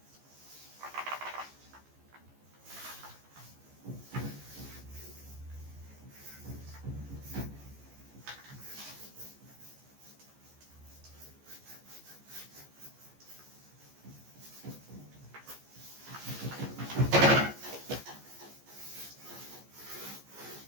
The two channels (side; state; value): left; late; 14 ms